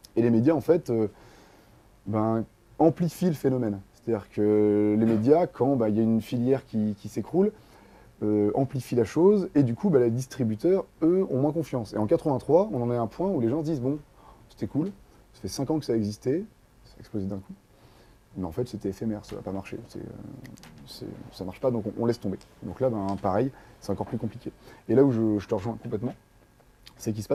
Et les médias en fait amplifient le phénomène. C'est-à-dire que les médias, quand il y a une filière qui s'écroule, amplifient la chose, et du coup, les distributeurs, eux, ont moins confiance. Et en 83, on en est à un point où les gens se disent, bon, c'était cool, ça fait 5 ans que ça existait, ça a explosé d'un coup, mais en fait, c'était éphémère, ça va pas marcher, ça marche pas, donc on laisse tomber. Donc là, pareil, c'est encore plus compliqué. Et là où je te rejoins complètement, c'est qu'il se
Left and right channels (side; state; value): both; identical; correlation 1.00